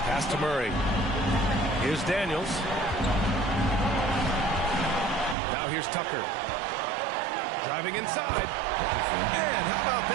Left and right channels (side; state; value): left; drops out; at 5.4 s